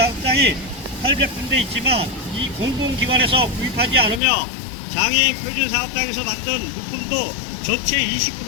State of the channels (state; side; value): drops out; right; at 4.2 s